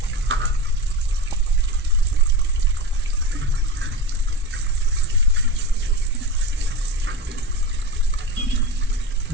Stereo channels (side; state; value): both; normal; correlation 0.26